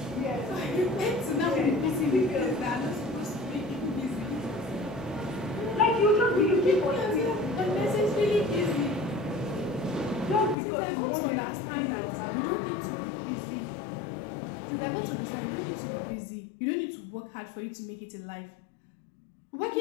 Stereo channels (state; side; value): drops out; right; at 10.6 s